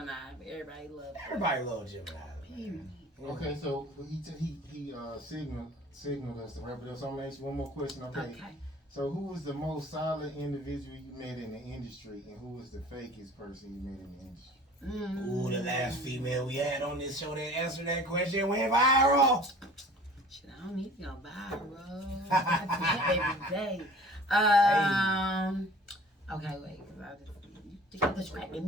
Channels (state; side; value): normal; both; correlation 0.46